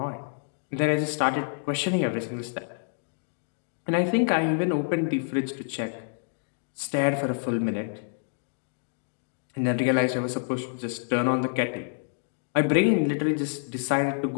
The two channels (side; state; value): right; silent; digital silence